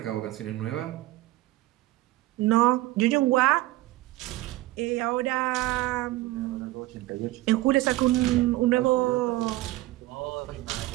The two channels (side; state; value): left; quieter; 18.0 dB